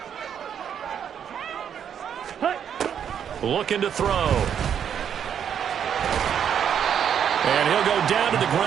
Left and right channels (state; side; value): quieter; left; 8.5 dB